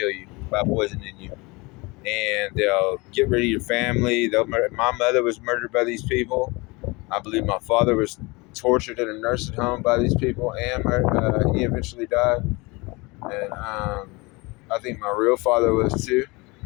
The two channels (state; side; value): quieter; right; 25.3 dB